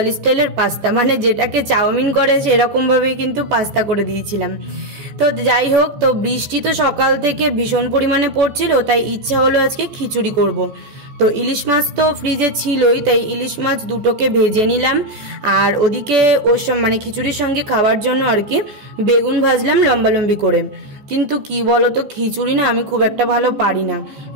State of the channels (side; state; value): left; late; 14 ms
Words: স্টাইলের পাস্তা, মানে যেটাকে চাউমিন করে সেরকম ভাবেই কিন্তু পাস্তা করে দিয়েছিলাম। তো যাই হোক, তো বৃষ্টি তো সকাল থেকে ভীষণ পরিমাণে পড়ছিল, তাই ইচ্ছা হলো আজকে খিচুড়ি করব। তো ইলিশ মাছ তো ফ্রিজে ছিলই, তাই ইলিশ মাছ দুটোকে ভেজে নিলাম। আর ওদিকে ওর মানে খিচুড়ির সঙ্গে খাওয়ার জন্য আর কি বেগুন ভাজলাম লম্বা লম্বি করে। কিন্তু কি বলতো, খিচুড়ি না আমি খুব একটা ভালো পারি না।